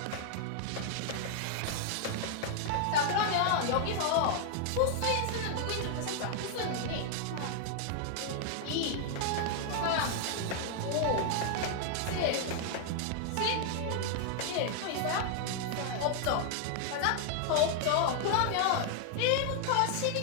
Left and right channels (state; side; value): different; both; correlation 0.00